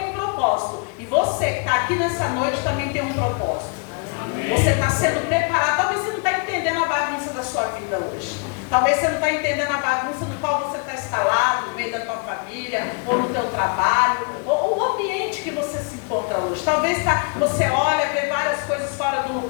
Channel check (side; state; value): right; quieter; 36.2 dB